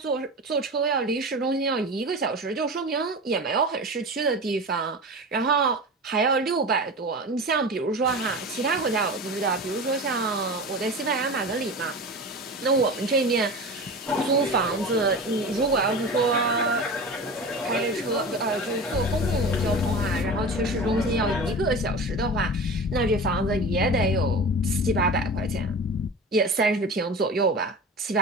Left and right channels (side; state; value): both; normal; correlation 0.31